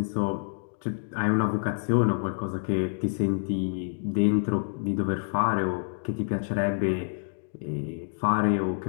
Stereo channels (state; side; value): silent; right; digital silence